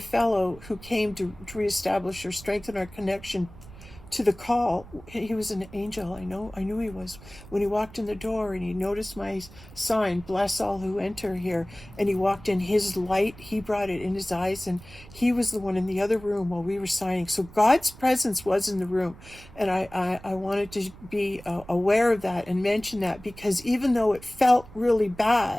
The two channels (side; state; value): right; noise; rumble, 19 dB below the sound